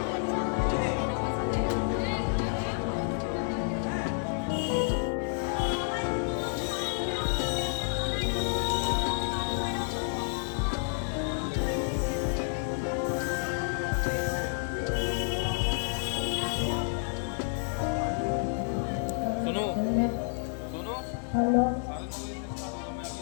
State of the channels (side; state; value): right; silent; 58 dB below the other